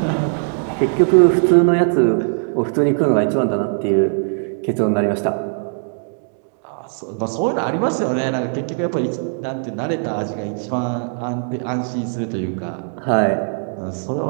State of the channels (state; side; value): silent; left; digital silence